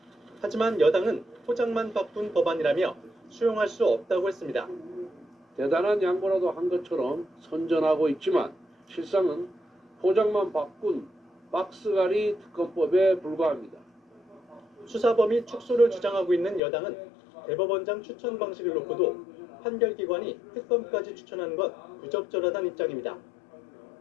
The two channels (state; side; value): drops out; right; at 16.6 s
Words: 하지만 여당은 포장만 바꾼 법안이라며 수용할 수 없다고 했습니다. 대단한 양보라도 한 것처럼 선전하고 있지만 실상은 포장만 바꾼 박스갈이 특검법에 불과합니다. 수사 범위 축소를 주장하고 있는 여당은 대법원장 추천 방식을 놓고도 판결기관이 특검까지 추천하는 건 부적절하다는 입장입니다.